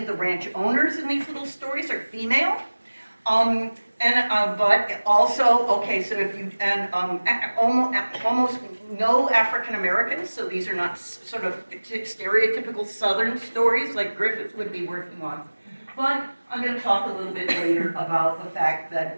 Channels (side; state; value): both; inverted; correlation -1.00